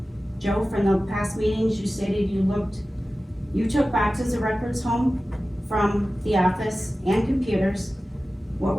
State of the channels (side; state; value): both; normal; correlation 0.95